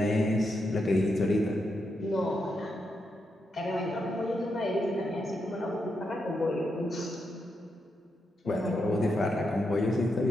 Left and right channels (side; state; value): both; normal; correlation 0.83